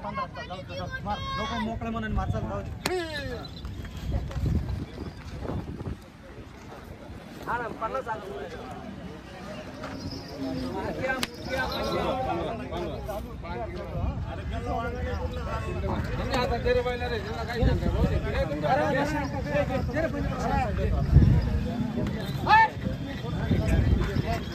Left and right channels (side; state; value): both; identical; correlation 1.00